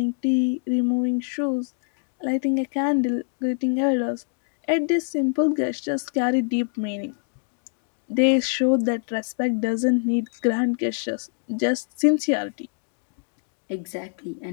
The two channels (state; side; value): silent; right; digital silence